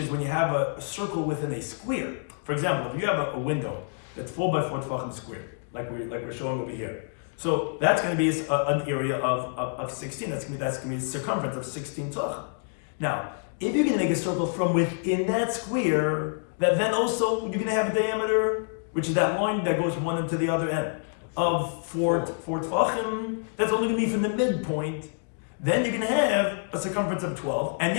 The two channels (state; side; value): silent; right; digital silence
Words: when you have a circle within a square. For example, if you have a window that's 4 by 4 tefachim square, like we're showing over here, so that's going to be an area of 16. That's going to be a circumference of 16 tefachim. Now, if you're going to make a circle from within that square, that then also you're going to have a diameter, which is that line that goes one into the other end, of 4 tefachim. That's only going to be from the midpoint. Then you're going to have a circumference of 12, and